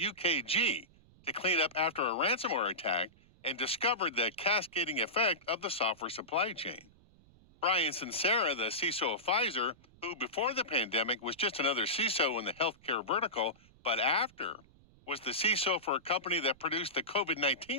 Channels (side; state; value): right; noise; rumble, 27 dB below the sound